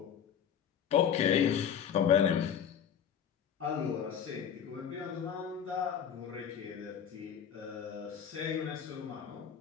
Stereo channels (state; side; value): quieter; right; 8.3 dB